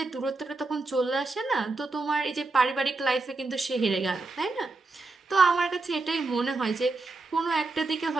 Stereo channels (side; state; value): left; quieter; 3.5 dB